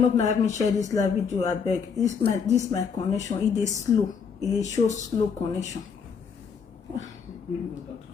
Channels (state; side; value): quieter; right; 6.3 dB